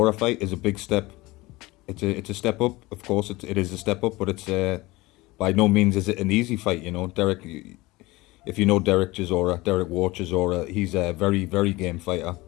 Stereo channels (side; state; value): right; quieter; 21.0 dB